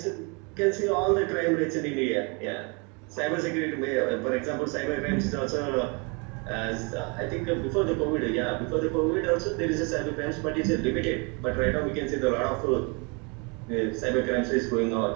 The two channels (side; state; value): left; quieter; 32.2 dB